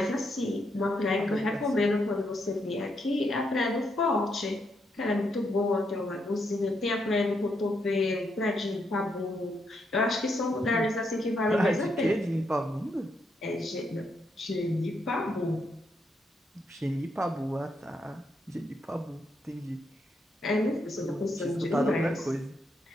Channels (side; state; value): both; normal; correlation 0.79